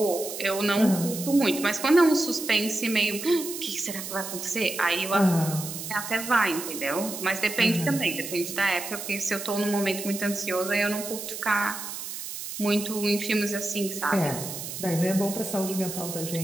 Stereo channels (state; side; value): noise; right; hiss, 8 dB below the sound